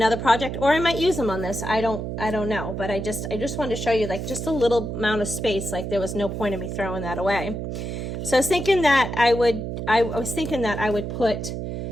project, or I might use them on this. I don't know, but I just wanted to show you like just a little amount of space. Like there was no point in me throwing that away. So I was thinking that I would put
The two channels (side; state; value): right; noise; hum, 5 dB below the sound